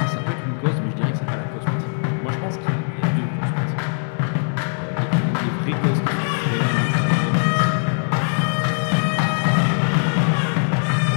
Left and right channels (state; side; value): silent; right; digital silence